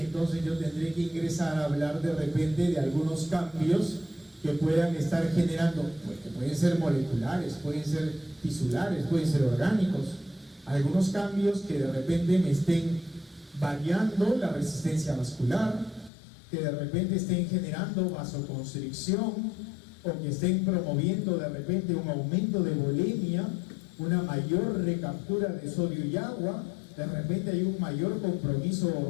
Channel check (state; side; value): drops out; right; at 16.1 s